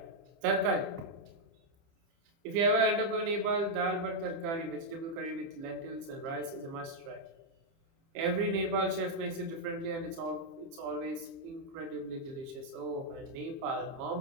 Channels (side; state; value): left; late; 30 ms